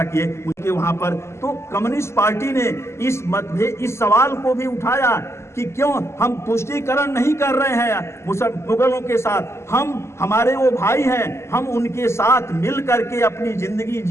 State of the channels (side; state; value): right; late; 0.13 ms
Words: किए उनके वहाँ पर। तो कम्युनिस्ट पार्टी ने इस सवाल को भी उठाया कि क्यों हम तुष्टीकरण नहीं कर रहे हैं मुगलों के साथ। हमारे वो भाई हैं, हम उनके साथ मिल करके अपनी जिंदगी